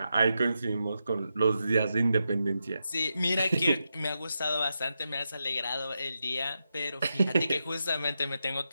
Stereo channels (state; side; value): inverted; both; correlation -0.87